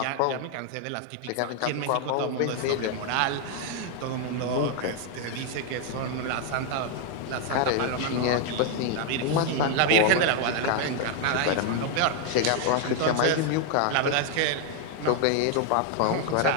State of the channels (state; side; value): different; both; correlation 0.00